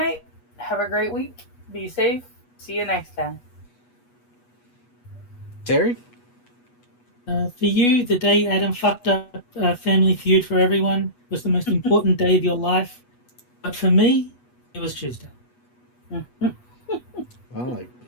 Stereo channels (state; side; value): late; right; 8.2 ms